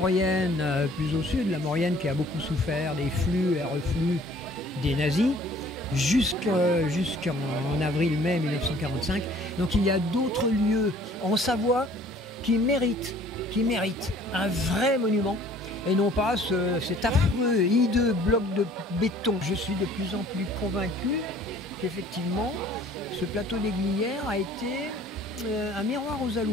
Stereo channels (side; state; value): both; normal; correlation 0.54